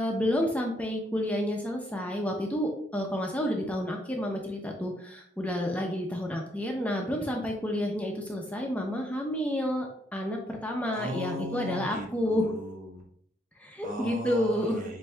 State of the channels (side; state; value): both; normal; correlation 0.72